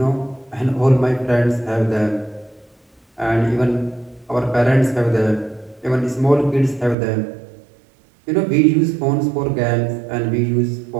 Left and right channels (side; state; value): left; drops out; at 7.0 s